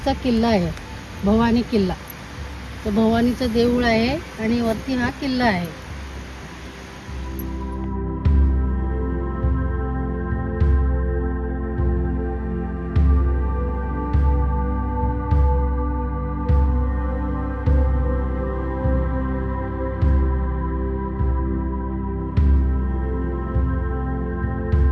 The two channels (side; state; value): both; identical; correlation 1.00